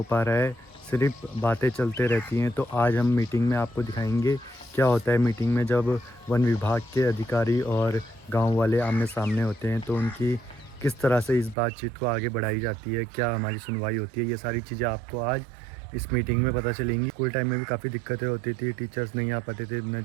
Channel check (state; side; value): drops out; left; at 11.6 s